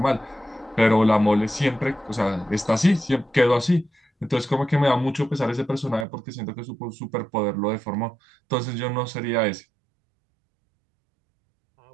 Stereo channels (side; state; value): left; drops out; at 6.1 s